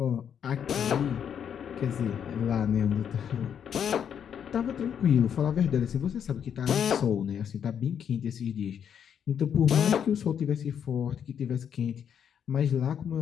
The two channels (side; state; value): right; quieter; 8.3 dB